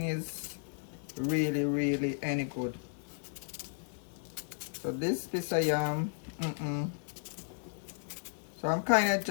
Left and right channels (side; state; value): right; silent; 55 dB below the other